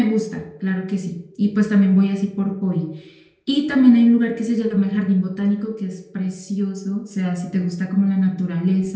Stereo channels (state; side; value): identical; both; correlation 1.00